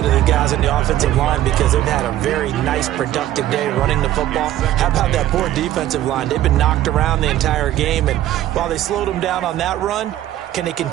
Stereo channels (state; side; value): quieter; left; 13.4 dB